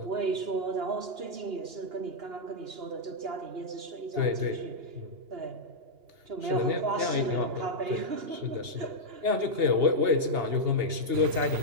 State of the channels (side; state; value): left; late; 2.9 ms